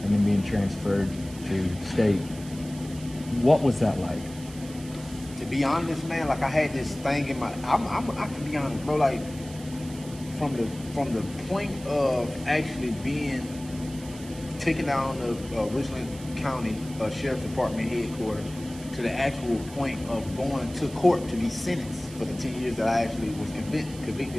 and then being transferred to state. What was that like? To be honest, man, like I had this thing in my, I can be honest, bro, like from the point of actually being taken down to Richland County Sheriff's Department headquarters to the actual point of going to court to be sentenced for the 10 years that I actually was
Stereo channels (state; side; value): noise; right; hiss, 18 dB below the sound